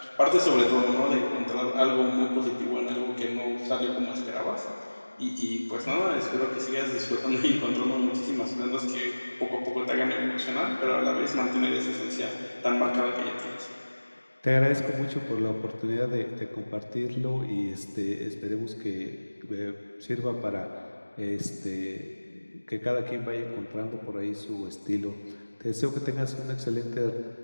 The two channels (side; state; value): both; inverted; correlation -1.00